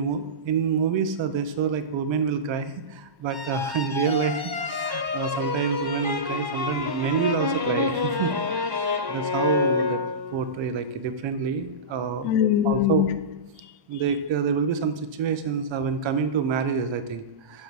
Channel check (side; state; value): left; late; 1.1 ms